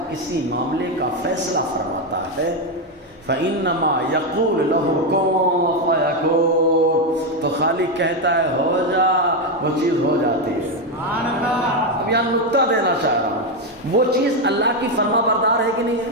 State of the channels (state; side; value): normal; both; correlation 0.07